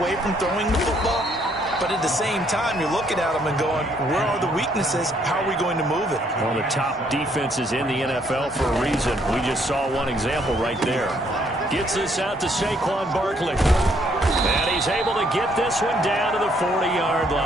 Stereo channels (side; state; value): both; normal; correlation 0.68